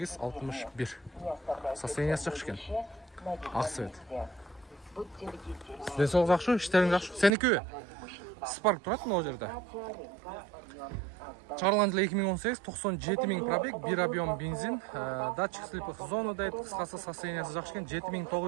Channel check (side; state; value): left; drops out; at 7.3 s